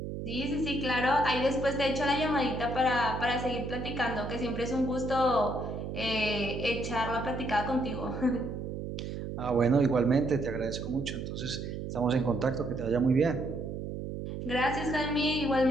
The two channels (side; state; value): right; noise; hum, 6 dB below the sound